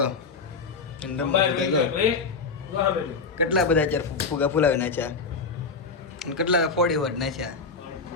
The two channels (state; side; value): quieter; right; 4.5 dB